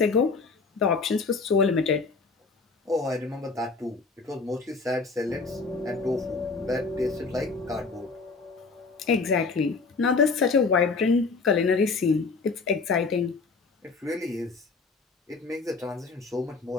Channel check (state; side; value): quieter; right; 4.2 dB